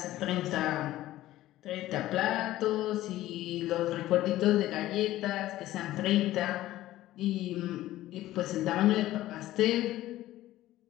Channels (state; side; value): quieter; right; 15.2 dB